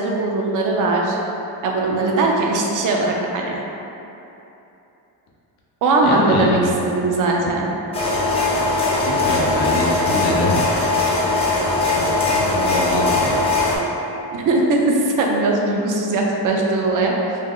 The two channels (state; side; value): normal; both; correlation 0.11